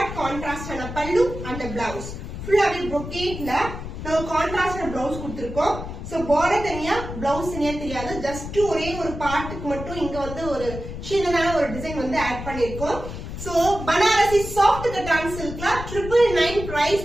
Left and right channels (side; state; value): left; noise; rumble, 8 dB below the sound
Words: கான்ட்ராஸ்ட் ஆன பல்லு. அந்த பிளவுஸ் ஃபுல்லாவே brocade-ல நம்ம கான்ட்ராஸ்ட் பிளவுஸ் கொடுத்திருக்கோம். சோ பார்டர் தனியா பிளவுஸ் தனியா தெரியாது. ஜஸ்ட் ஒரே ஒரு பார்ட்டுக்கு மட்டும் இங்க வந்து ஒரு சின்னதான ஒரு டிசைன் வந்து ஆட் பண்ணிருக்கோம். சோ பனாரசி சாஃப்ட் கட்டான் சில்க்ல 999 price